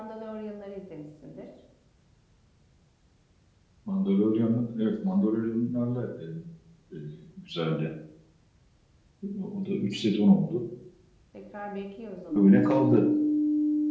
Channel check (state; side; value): identical; both; correlation 1.00